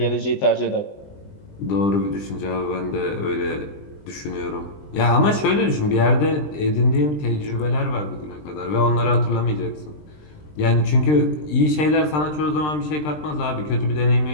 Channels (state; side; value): late; right; 20 ms